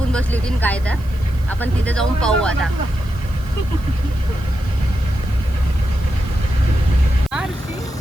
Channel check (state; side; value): noise; right; hiss, 26 dB below the sound